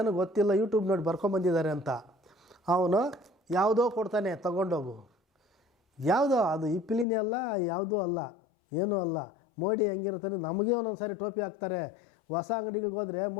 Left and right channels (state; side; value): drops out; right; at 7.1 s